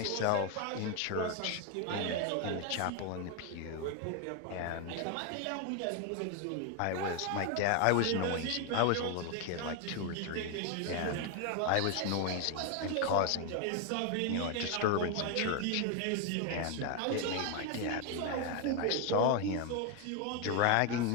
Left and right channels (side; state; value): both; different; correlation 0.01